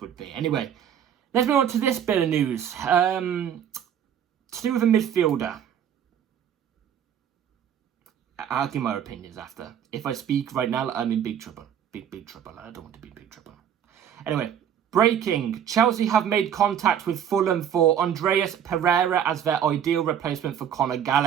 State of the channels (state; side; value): quieter; left; 9.1 dB